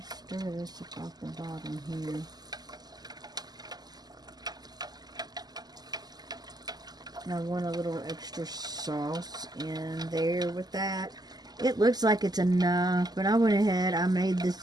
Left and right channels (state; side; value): late; left; 0.20 ms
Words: stir this up off the bottom here. I want a little extra sauce in there with that. It looks like it's enough, but I went ahead, I made